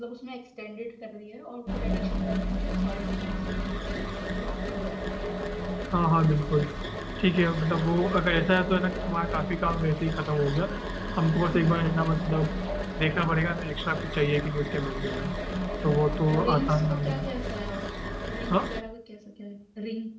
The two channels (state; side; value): identical; both; correlation 1.00